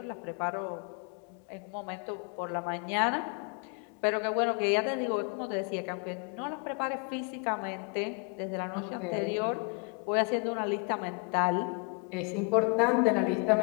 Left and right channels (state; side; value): quieter; right; 35.7 dB